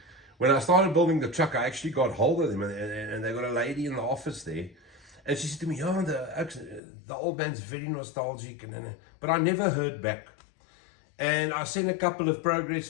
When I started building the truck, I actually got hold of them, and they got a lady in the office there. And she said to me, oh, the old man's very nostalgic. But I never heard back. And I sent a couple of progress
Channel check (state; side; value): drops out; right; at 6.8 s